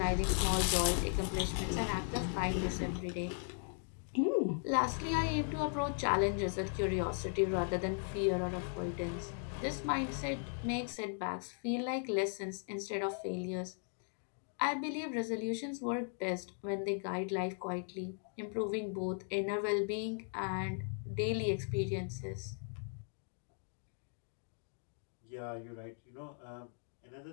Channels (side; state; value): right; silent; 53 dB below the other